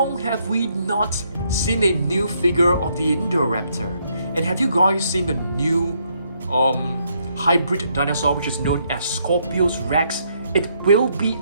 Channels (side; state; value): both; inverted; correlation -0.73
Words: have we not seen a new figure of the Indoraptor? And have you guys seen the new hybrid dinosaur which is known as Scorpius Rex. It will be